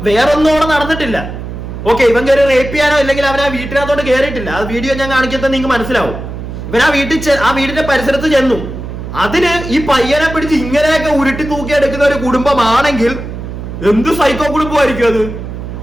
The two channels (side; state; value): right; noise; hum, 9 dB below the sound